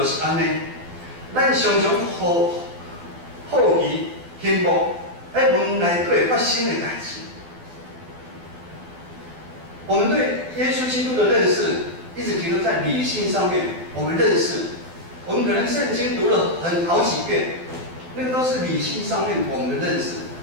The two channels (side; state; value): left; late; 12 ms